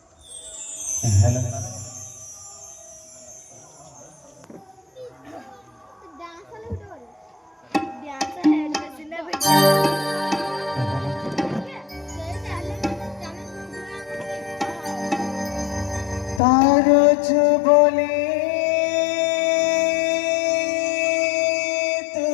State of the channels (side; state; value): right; drops out; at 16.4 s